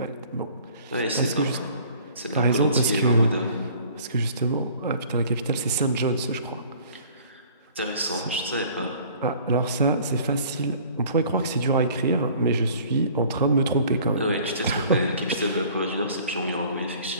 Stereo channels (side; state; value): both; inverted; correlation -0.51